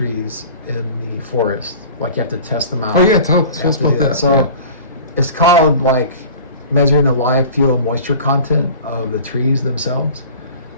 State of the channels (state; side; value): inverted; both; correlation -0.41